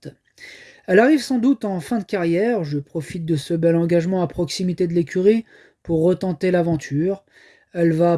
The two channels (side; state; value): both; identical; correlation 1.00